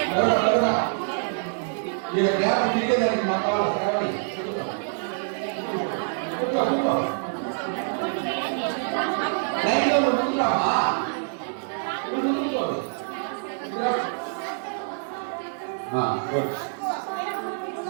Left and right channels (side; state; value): left; silent; digital silence